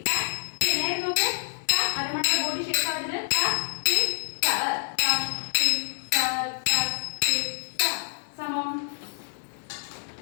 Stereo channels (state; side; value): silent; right; digital silence